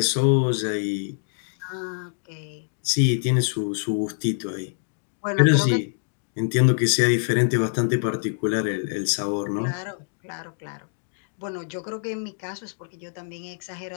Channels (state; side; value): silent; right; digital silence